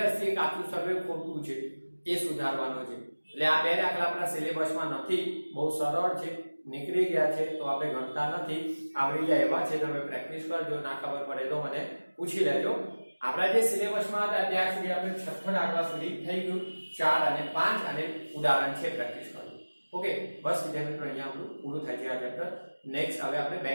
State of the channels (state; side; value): inverted; both; correlation -1.00